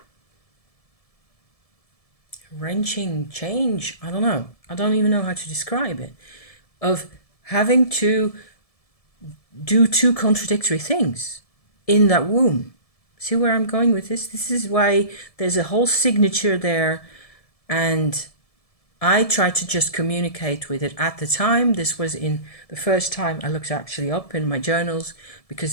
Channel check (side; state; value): right; late; 1.7 ms